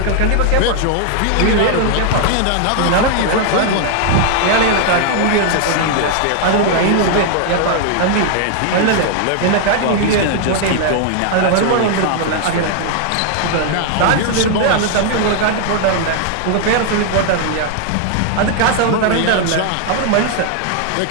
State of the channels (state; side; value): different; both; correlation 0.00